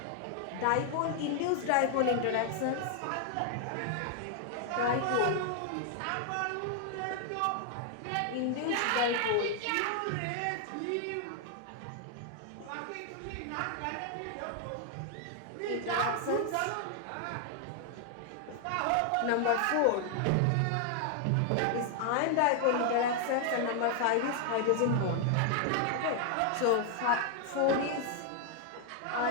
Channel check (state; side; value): different; both; correlation 0.00